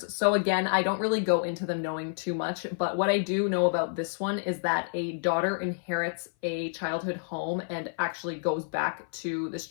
So again, I don't really go into them knowing too much, but what I do know about this one is that a daughter inherits a childhood home and actually goes back to this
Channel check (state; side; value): silent; right; 56 dB below the other